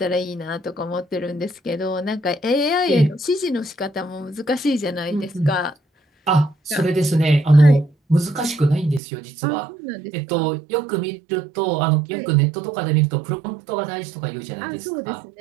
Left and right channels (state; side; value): drops out; left; at 9.0 s